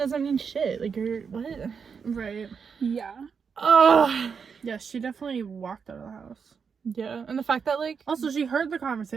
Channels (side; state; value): left; quieter; 6.1 dB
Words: mean shit. Like, you're... What? Right. Yeah. Ugh. Yeah, she definitely walked out of the house. Yeah. And the fact that, like... Also, she heard the